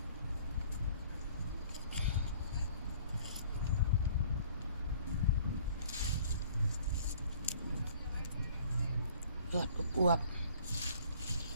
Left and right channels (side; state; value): both; inverted; correlation -0.54